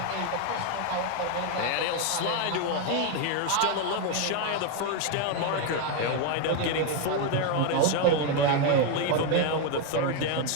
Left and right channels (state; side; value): different; both; correlation 0.02